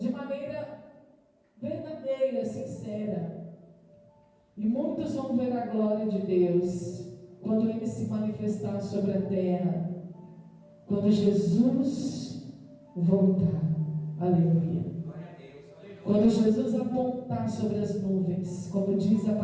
maneira verdadeira, sincera. E muitos vão ver a glória de Deus quando Ele se manifestar sobre a terra, quando Jesus voltar. Aleluia. Quando Jesus apontar sobre as nuvens, como diz a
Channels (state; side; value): identical; both; correlation 1.00